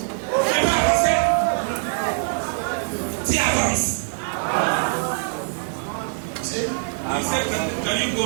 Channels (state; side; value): silent; left; digital silence